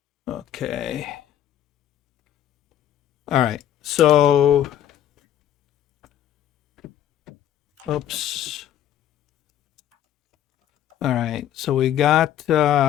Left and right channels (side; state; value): right; quieter; 11.2 dB